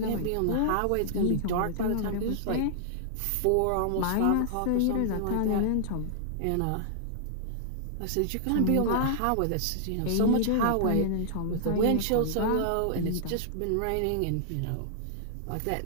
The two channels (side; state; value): both; different; correlation -0.01